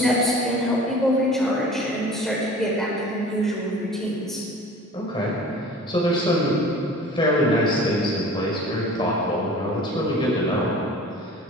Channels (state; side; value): normal; both; correlation 0.43